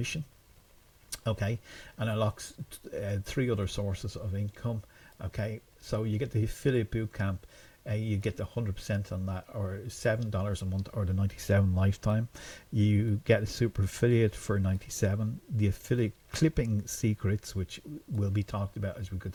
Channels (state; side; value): identical; both; correlation 1.00